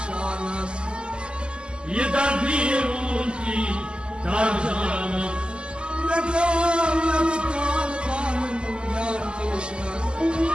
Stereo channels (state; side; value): late; left; 0.049 ms